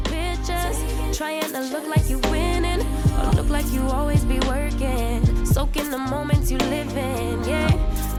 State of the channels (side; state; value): both; identical; correlation 1.00